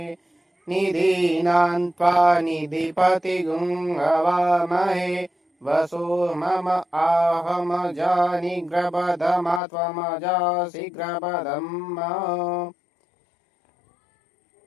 निधीनां त्वा निधिपतिगुं हवामहे वसो मम आहम जानिग्रपदमा त्वमजासि ग्रपदम्।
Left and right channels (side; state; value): right; drops out; at 9.6 s